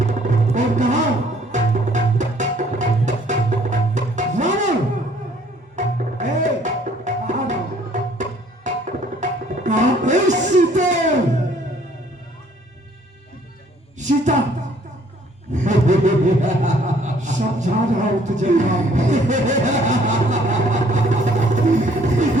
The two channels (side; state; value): both; normal; correlation 0.60